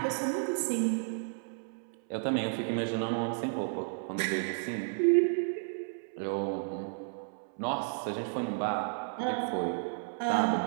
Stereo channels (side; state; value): left; silent; 56 dB below the other